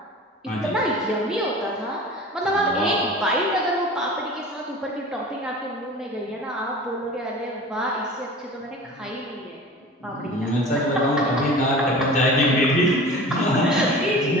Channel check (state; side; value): normal; both; correlation 0.39